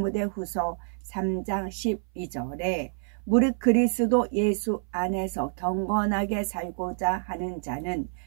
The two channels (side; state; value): left; silent; 58 dB below the other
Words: 3장 12절에 무릇 그리스도 예수 안에서 경건하게 살고자 하는 자는